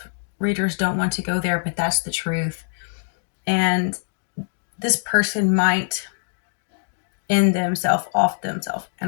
readers don't want to go there, but that's the truth. and this person might end themselves off themselves.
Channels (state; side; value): silent; right; digital silence